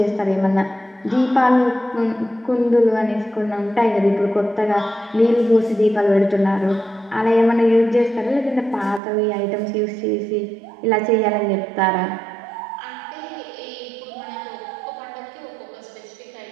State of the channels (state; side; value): drops out; left; at 9.0 s